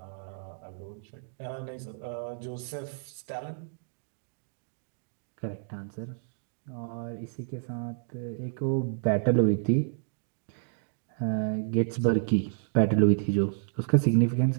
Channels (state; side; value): silent; left; digital silence